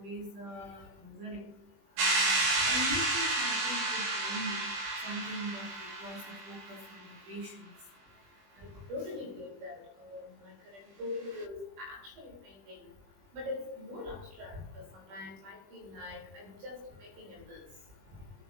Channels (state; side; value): late; left; 20 ms